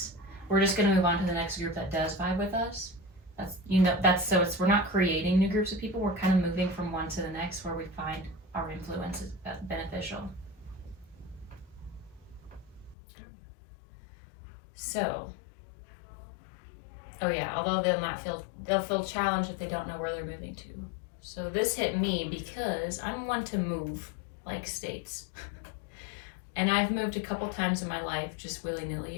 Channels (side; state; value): right; drops out; at 13.0 s